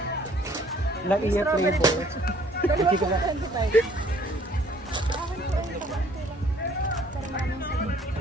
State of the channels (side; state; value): both; normal; correlation 0.58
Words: La iya flavor. Dalawa po 25. Akin po ay pakaunti lang. Para maraming sa'yo.